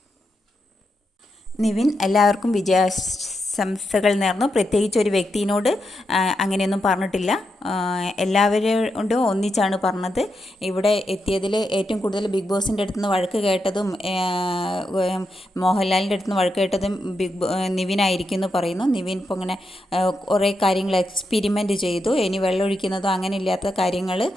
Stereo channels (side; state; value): both; normal; correlation 0.85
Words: നിവിൻ എല്ലാവർക്കും വിജയാശംസകൾ നേർന്നു. പ്രത്യേകിച്ച് ഒരു വ്യക്തിയോട് അങ്ങനെയൊന്നും പറഞ്ഞിട്ടില്ല. എല്ലാവരോടും ഒന്നിച്ചാണ് പറഞ്ഞത്. ഇവിടെ എത്തിയതിൽ ഏറ്റവും കൂടുതൽ ബിഗ് ബോസിൻ്റെ അടുത്ത് നിന്ന് വഴക്ക് കേട്ടതും മോഹൻലാലിൻ്റെ അടുത്ത് നിന്ന് വഴക്ക് കേട്ടതും നിവിനായിരിക്കും എന്ന് പറയുന്നു. നിവിൻ ഇപ്പോൾ ഇങ്ങനെ കുറേ കാര്യങ്ങൾ എക്സ്പെരിമെൻ്റ് ചെയ്തു. ഇനി വെള്ളമൊഴിക്കുന്നതോ അങ്ങനെ ഇല്ലാത്ത കാര്യങ്ങൾ